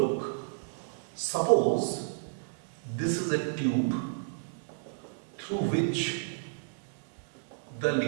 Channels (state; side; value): silent; left; digital silence